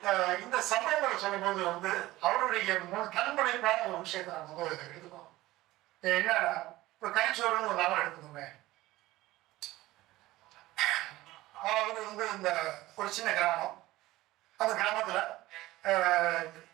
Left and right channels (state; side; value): quieter; left; 17.5 dB